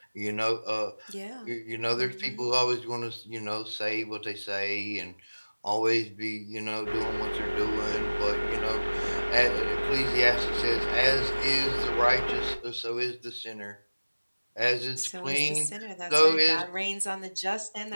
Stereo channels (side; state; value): both; inverted; correlation -1.00